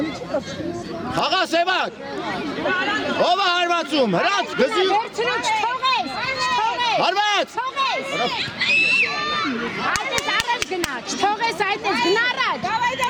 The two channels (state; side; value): identical; both; correlation 1.00